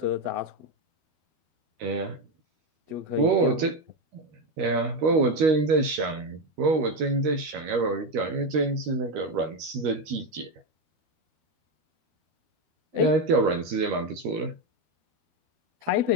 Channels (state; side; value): late; left; 13 ms